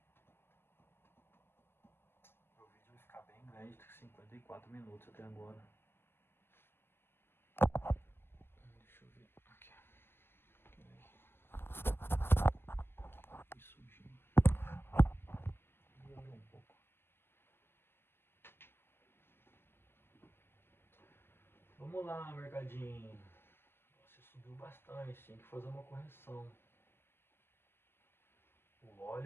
O vídeo vai ficar bem grande, 54 minutos até agora. sujinho. Vou um pouco. Vamos lá, mercadinho. Você subiu bastante, tem que fazer uma correção. O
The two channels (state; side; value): late; right; 0.11 ms